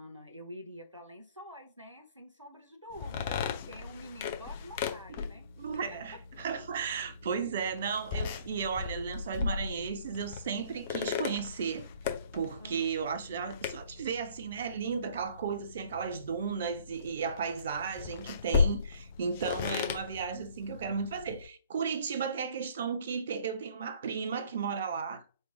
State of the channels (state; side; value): inverted; both; correlation -0.56